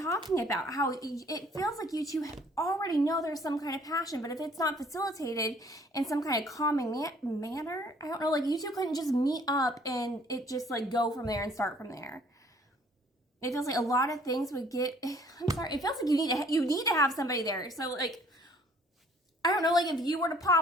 about. How it feels like you two already know there's some kind of passion, but if it's not facilitated in some kind of calming manner, I don't know, like you two couldn't just meet up and it just like go from there and start from there. It feels like a lot of things would get, I'm sorry, it feels like you need to have somebody there. So like, I don't know, like if you were to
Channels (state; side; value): normal; both; correlation 0.58